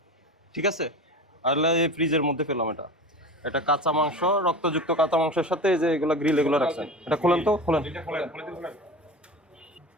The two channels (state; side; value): normal; both; correlation 0.31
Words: ঠিক আছে? আর এই ফ্রিজের মধ্যে পেলাম এটা, এটা কাঁচা মাংস, রক্তযুক্ত কাঁচা মাংসের সাথে যে এগুলো গ্রিল এগুলো রাখছেন। এটা খোলেন তো, খোলেন।